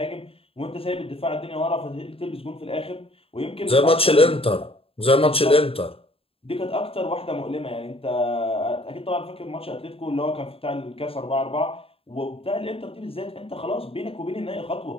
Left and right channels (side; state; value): right; late; 0.27 ms